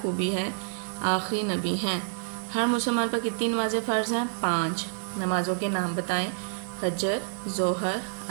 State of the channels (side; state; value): left; silent; 59 dB below the other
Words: है? आखिरी नबी हैं। हर मुसलमान पर कितनी नमाज़ें फ़र्ज़ हैं? 5। नमाज़ों के नाम बताएं। फजर, ज़ोहर,